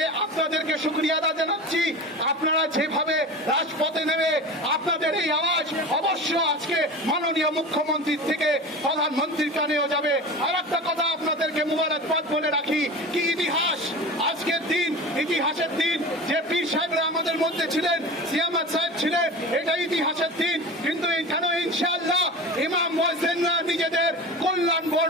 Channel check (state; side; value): normal; both; correlation 0.32